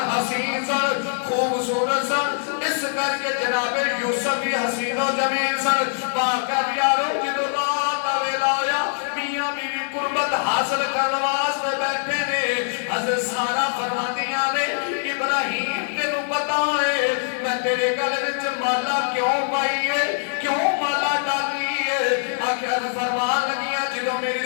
حسین سن خوبصورت سن اس کر کے جناب یوسف بھی حسین و جمیل سن باقر یارو جدو رات ویلا آیا میاں بیوی قربت حاصل کرنے واسطے بیٹھے نے حضرت سارا فرماندیاں نے ابراہیم تینوں پتا ہے میں تیرے گلے وچ مالا کیوں پائی ہے کیوں مالا ڈالی ہے آخر فرمان لگیاں جدو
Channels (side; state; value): right; silent; digital silence